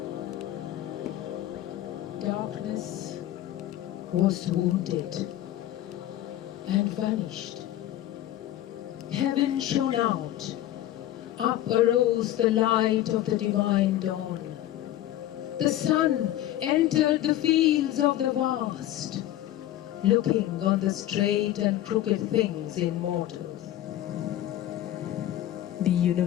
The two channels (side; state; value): right; quieter; 13.4 dB